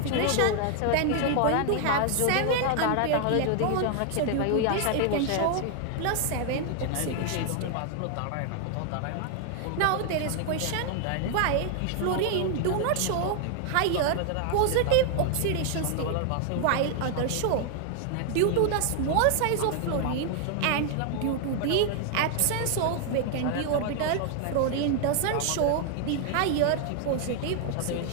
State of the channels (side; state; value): both; different; correlation 0.00